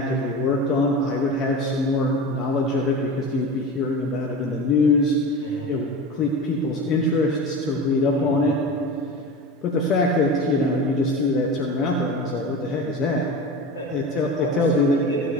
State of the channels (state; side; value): normal; both; correlation 0.30